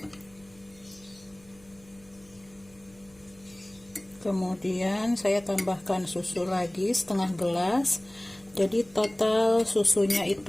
Kemudian saya tambahkan susu lagi setengah gelas. Jadi total susunya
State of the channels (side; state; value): right; noise; hum, 26 dB below the sound